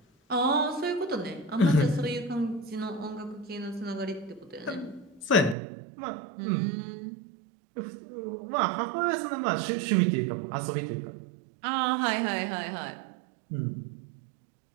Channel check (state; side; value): drops out; left; at 5.6 s